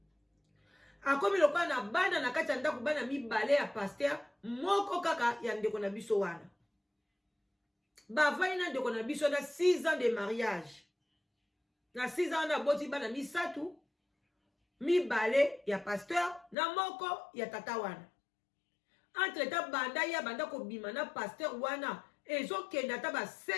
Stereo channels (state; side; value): drops out; right; at 16.6 s